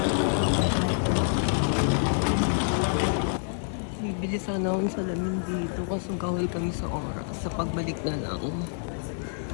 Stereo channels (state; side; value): silent; right; 60 dB below the other